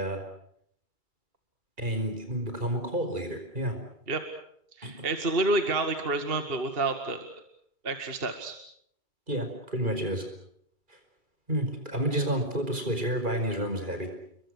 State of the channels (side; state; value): left; late; 2.4 ms